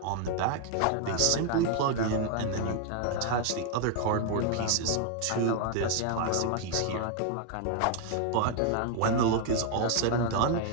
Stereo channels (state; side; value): different; both; correlation 0.00